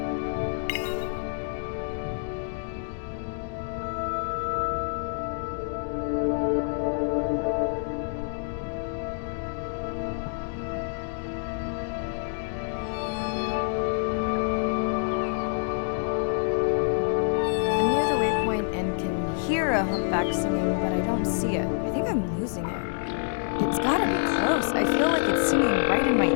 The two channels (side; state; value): right; silent; digital silence